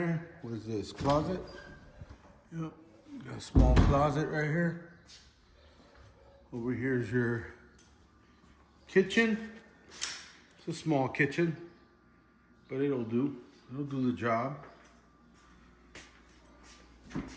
What is this? Closet? Yep. Got a small closet right here. Over here is your kitchen. It's a small kitchen, but it'll do. It'll do the job.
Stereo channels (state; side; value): identical; both; correlation 1.00